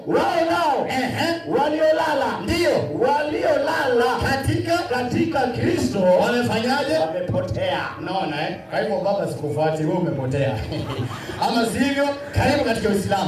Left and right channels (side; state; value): both; identical; correlation 1.00